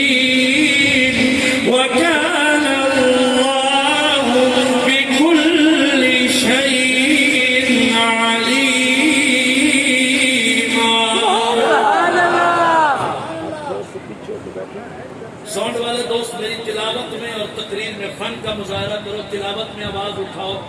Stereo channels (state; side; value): identical; both; correlation 1.00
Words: فن کا مظاہرہ کرو، تلاوت میں آواز اٹھاؤ،